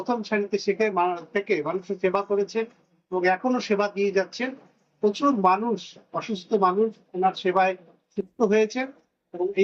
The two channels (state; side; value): identical; both; correlation 1.00